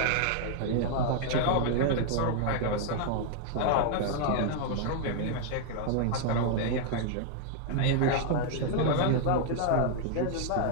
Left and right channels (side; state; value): both; different; correlation 0.00